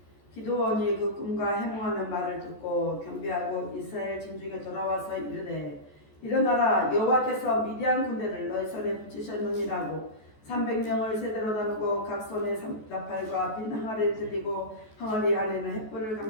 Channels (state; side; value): late; right; 14 ms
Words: 기드온이 그 꿈과 해몽하는 말을 듣고 경배하고 이스라엘 진중에 돌아와서 이르되 일어나라, 여호와께서 미디안 군대를 너희 손에 붙이셨느니라고 300명을 세대로 나누고 각 손에 나팔과 빈 항아리를 들리고 항아리 안에는 횃불을